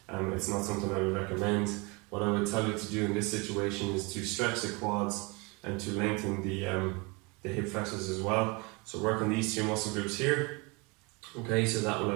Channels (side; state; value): left; quieter; 28.2 dB